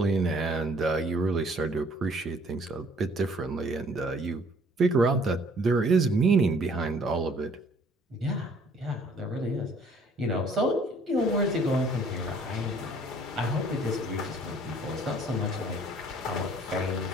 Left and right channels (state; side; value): normal; both; correlation 0.58